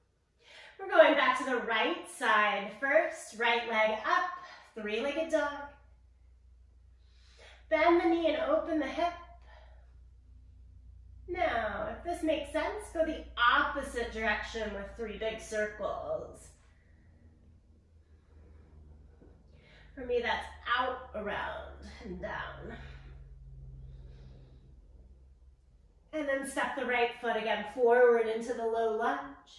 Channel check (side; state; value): both; identical; correlation 1.00